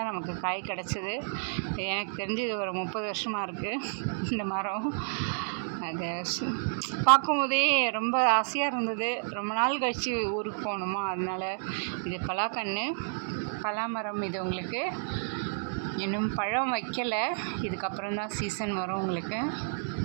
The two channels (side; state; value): left; silent; digital silence